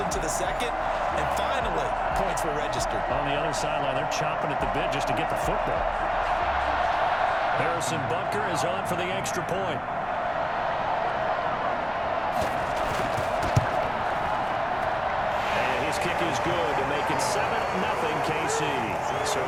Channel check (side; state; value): both; identical; correlation 1.00